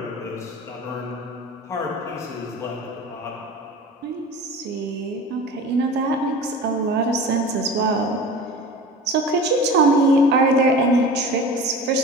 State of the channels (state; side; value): normal; both; correlation 0.36